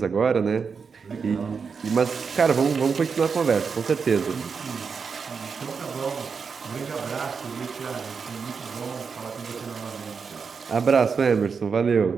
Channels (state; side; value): quieter; left; 5.6 dB